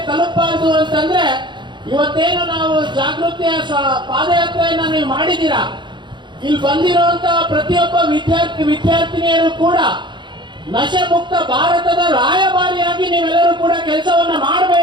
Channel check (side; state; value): left; late; 0.23 ms